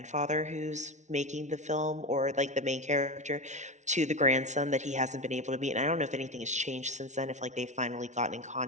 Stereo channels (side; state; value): left; late; 0.34 ms